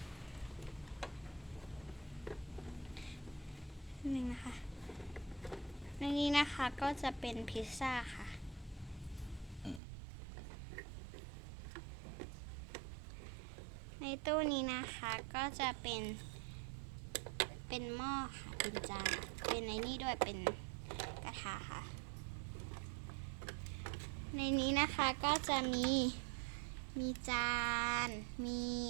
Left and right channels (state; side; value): drops out; left; at 9.8 s